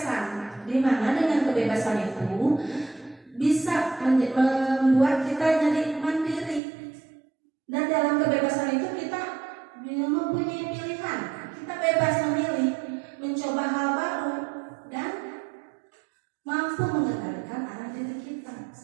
di mana dengan kebebasan itu bisa membuat kita jadi mandiri. Dan dalam kebebasan itu kita mempunyai pilihan. Kita bebas memilih, mencoba hal baru, dan mampu mengendalikan arah diri kita,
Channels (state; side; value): drops out; left; at 6.6 s